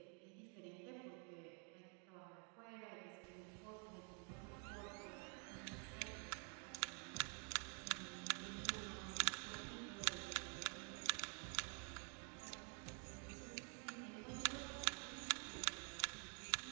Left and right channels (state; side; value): quieter; left; 39.7 dB